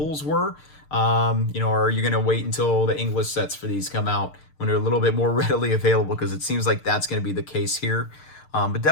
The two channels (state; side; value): late; right; 6.7 ms